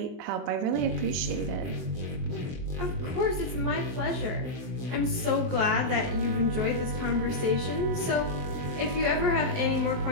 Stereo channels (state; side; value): late; left; 23 ms